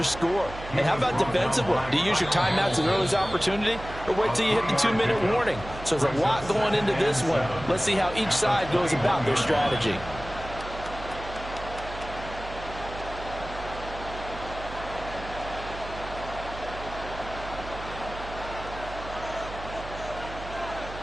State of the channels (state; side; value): noise; right; hum, 12 dB below the sound